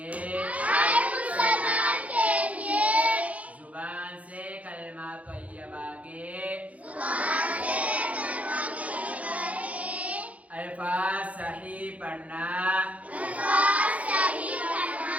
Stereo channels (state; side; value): late; left; 0.067 ms